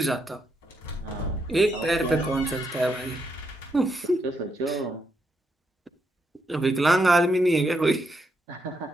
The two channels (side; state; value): both; normal; correlation 0.79